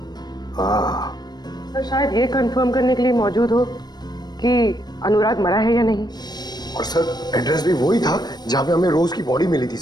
हाँ सर, शायद ये कंफर्म करने के लिए मौजूद हो कि अनुराग मरा है या नहीं। और सर एड्रेस भी वही था जहां पे हमें रोज की बॉडी मिली थी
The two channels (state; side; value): late; right; 0.20 ms